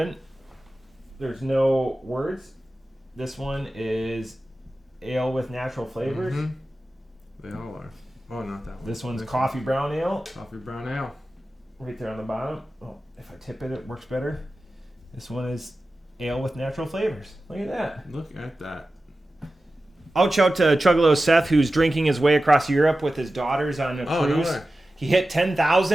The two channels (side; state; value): both; normal; correlation 0.94